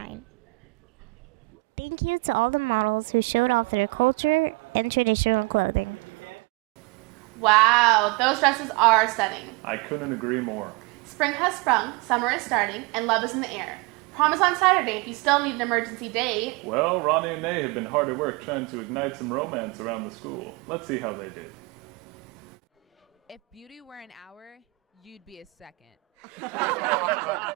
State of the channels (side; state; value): left; quieter; 26.0 dB